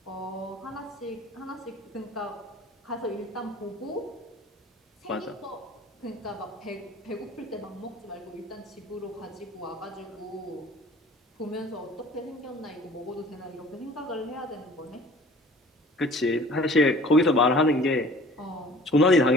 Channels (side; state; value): both; normal; correlation 0.48